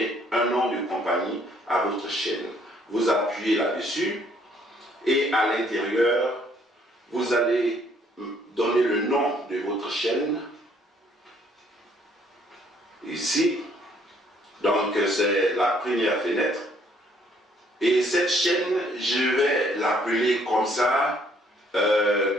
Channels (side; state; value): both; normal; correlation 0.65